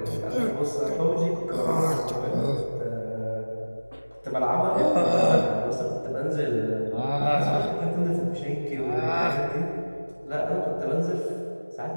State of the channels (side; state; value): both; inverted; correlation -1.00